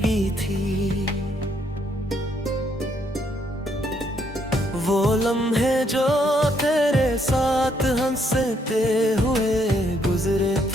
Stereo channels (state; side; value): normal; both; correlation 0.72